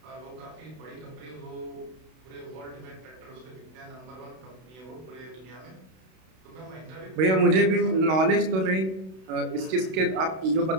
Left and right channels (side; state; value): left; late; 32 ms